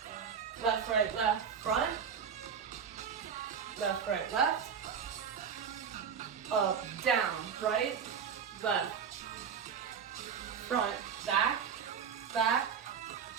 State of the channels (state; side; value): quieter; left; 7.1 dB